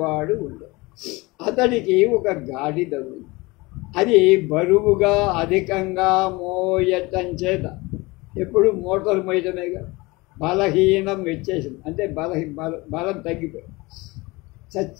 ఉండడు. అతడికి ఒక గాడిద ఉంది. అది బరువుగా అధికంగా మోయటం చేత ఎప్పుడు మోటార్ మోయటమేగా బలహీనం వచ్చేసింది. అంటే బలం తగ్గిపోయింది,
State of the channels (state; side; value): quieter; right; 23.3 dB